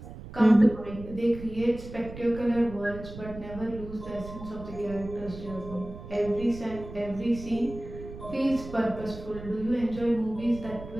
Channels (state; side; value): noise; right; rumble, 13 dB below the sound